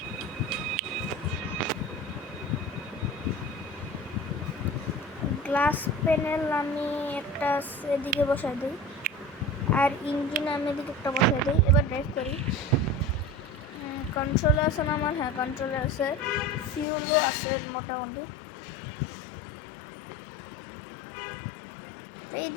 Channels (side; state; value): right; drops out; at 16.9 s